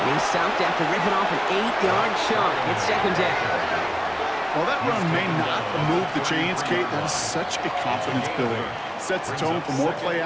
he's stopped after ripping off an 8-yard chunk. It's second down. While that run may not move the chains, Kate, that is such a confidence builder. Sets the tone for more play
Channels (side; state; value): both; identical; correlation 1.00